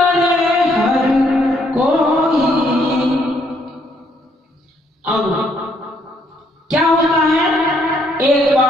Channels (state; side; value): normal; both; correlation 0.70